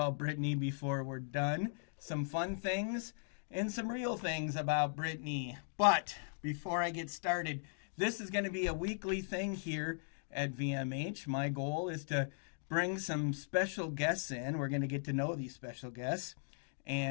Brittney before we're done. Some fun things and some real things about Brittney. But before I get started, this is going to be a weekly thing here at VMH. My goal is to bring some special guests in. We're going to get to know these special guests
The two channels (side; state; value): right; silent; digital silence